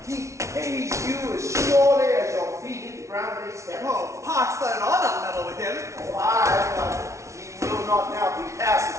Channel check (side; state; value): left; late; 0.14 ms